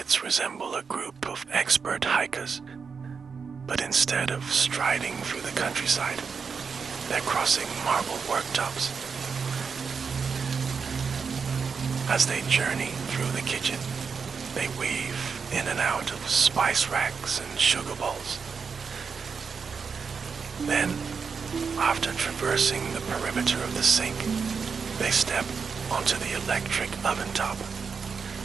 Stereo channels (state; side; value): quieter; left; 5.7 dB